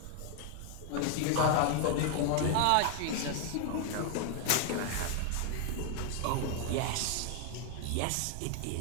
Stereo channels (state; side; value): different; both; correlation 0.00